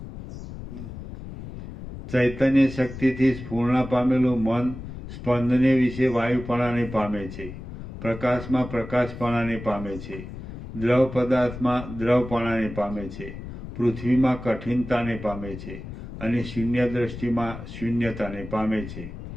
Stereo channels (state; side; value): noise; left; rumble, 11 dB below the sound